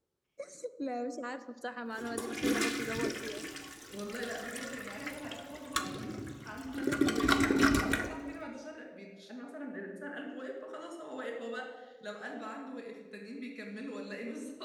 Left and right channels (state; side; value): identical; both; correlation 1.00